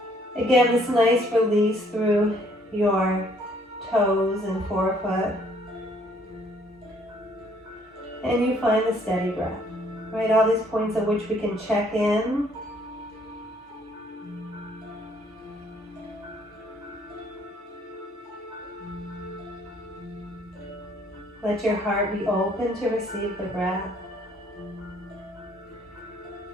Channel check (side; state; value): both; normal; correlation 0.63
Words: Again, this nice release through your toes and forefoot. And you find the steady breath, right? All these points at which we can check in. Let your heart be open to receive the breath.